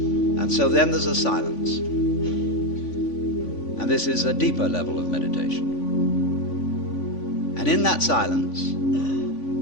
so then there's a silence. And this is a deeper level of meditation. And in that silence,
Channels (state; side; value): late; right; 3.5 ms